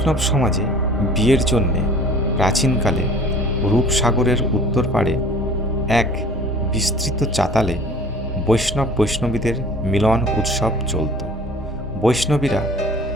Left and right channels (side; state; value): both; normal; correlation 0.47